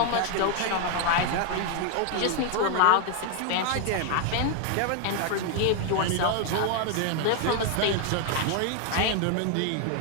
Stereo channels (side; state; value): both; different; correlation 0.00